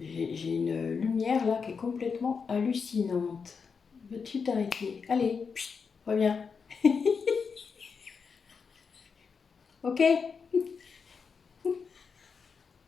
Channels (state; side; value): quieter; right; 5.6 dB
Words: une lumière, là, qui est complètement hallucinante. Veux-tu t'arrêter? Allez, reviens. Ok?